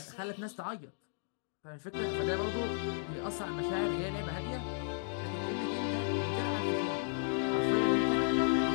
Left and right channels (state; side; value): silent; right; digital silence